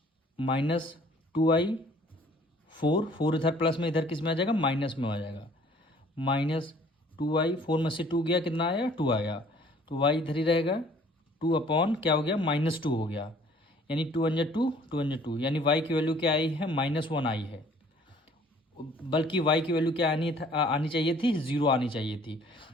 -2y 4 इधर प्लस में, इधर किस में आ जाएगा, माइनस में आ जाएगा। -2y 4 में से 2 गया, कितना आया, 2 आया। तो y इधर ही रहेगा, 2 अपॉन क्या हो गया, -2 हो गया, यानी 2 1 जा 2, 2 1 जा 2, यानी y की वैल्यू क्या आई है, -1 आई है। बल्कि y की वैल्यू क्या आनी चाहिए थी, 0 आनी चाहिए थी,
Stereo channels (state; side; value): normal; both; correlation 0.56